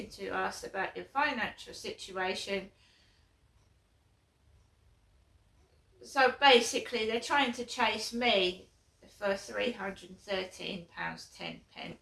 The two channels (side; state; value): both; identical; correlation 1.00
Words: to us about your financial situation. So basically, they're trying to chase me for £313.10.